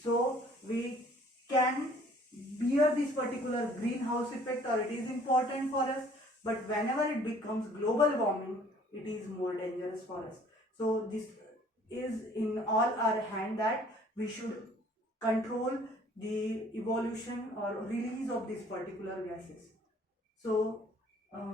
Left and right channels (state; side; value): normal; both; correlation 0.55